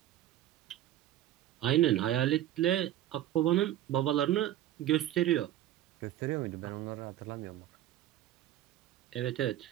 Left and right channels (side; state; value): left; quieter; 13.0 dB